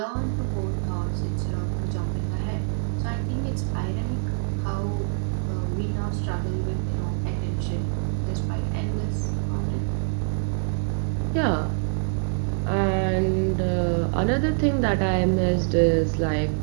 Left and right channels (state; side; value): silent; left; digital silence